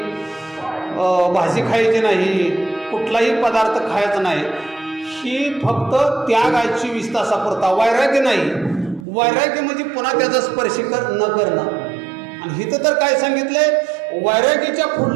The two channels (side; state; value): left; drops out; at 9.1 s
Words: भाजी खायची नाही, कुठलाही पदार्थ खायचा नाही, ही फक्त त्याग आहे 24 तासापुरता. वैराग्य नाही. वैराग्य म्हणजे पुन्हा त्याचा स्पर्श न करणं. आणि इथं तर काय सांगितलंय, वैराग्याच्या